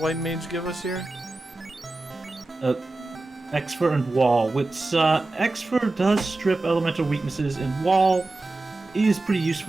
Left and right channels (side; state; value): left; quieter; 3.1 dB